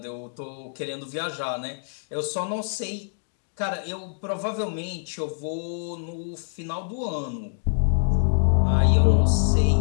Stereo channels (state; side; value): silent; right; digital silence